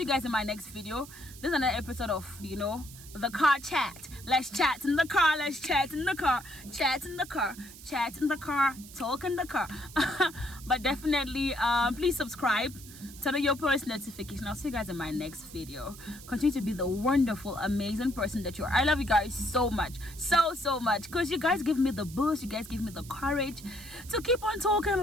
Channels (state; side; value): noise; right; hiss, 17 dB below the sound